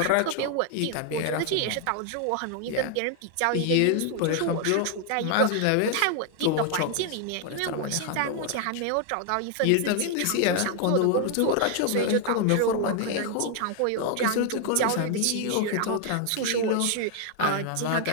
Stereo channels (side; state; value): both; different; correlation 0.00